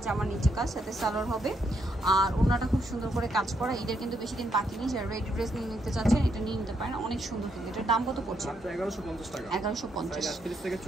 আমার নিচে কাজ, সাথে সালোয়ার হবে। আর ওনাটা খুব সুন্দর করে কাজ করা। ঈদের কিন্তু বেশি দিন বাকি নেই। যারা রেডি ড্রেস নিয়ে নিতে চাচ্ছেন এটা নিয়ে নিতে পারেন, অনেক সুন্দর। কিন্তু এটার দাম কত পড়ছে? 1150 টাকা। 1150,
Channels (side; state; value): both; normal; correlation 0.77